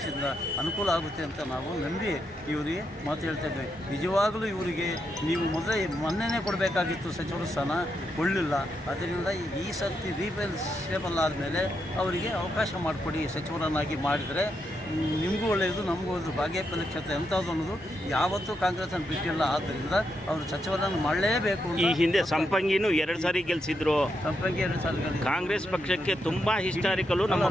ಅನುಕೂಲ ಆಗುತ್ತೆ ಅಂತ ನಾವು ನಂಬಿ ಇವರಿಗೆ ಮಾತು ಹೇಳ್ತೇವೆ. ನಿಜವಾಗಲೂ ಇವರಿಗೆ ನೀವು ಮೊನ್ನೆನೇ ಕೊಡಬೇಕಾಗಿತ್ತು ಸಚಿವರ ಸ್ಥಾನ, ಕೊಡಲಿಲ್ಲ. ಅದರಿಂದ ಈ ಸರ್ತಿ ರೀಪ್ಲೇಸೇಬಲ್ ಆದಮೇಲೆ ಅವರಿಗೆ ಅವಕಾಶ ಮಾಡಿಕೊಡಿ. ಸಚಿವರನ್ನಾಗಿ ಮಾಡಿದರೆ ನಿಮಗೂ ಒಳ್ಳೆಯದು, ನಮಗೂ ಒಳ್ಳೆಯದು. ಬಾಗೇಪಲ್ಲಿ ಕ್ಷೇತ್ರ ಎಂಥದ್ದು ಅನ್ನೋದು ಯಾವತ್ತೂ ಕಾಂಗ್ರೆಸ್ಸನ್ನು ಬಿಟ್ಟಿಲ್ಲ. ಆದ್ದರಿಂದ ಅವರು ಸಚಿವರನ್ನು ಮಾಡಲೇಬೇಕು. ಈ ಹಿಂದೆ ಸಂಪಂಗಿನೂ 2 ಸಾರಿ ಗೆಲ್ಲಿಸಿದ್ರು. ಸಂಪಂಗಿ 2 ಸಾರಿ ಕಾಂಗ್ರೆಸ್ ಪಕ್ಷಕ್ಕೆ ತುಂಬ ಹಿಸ್ಟಾರಿಕಲು ನಮ್ಮ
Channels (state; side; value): normal; both; correlation 0.82